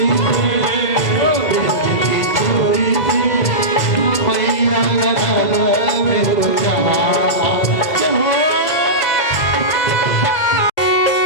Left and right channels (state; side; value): late; right; 2.0 ms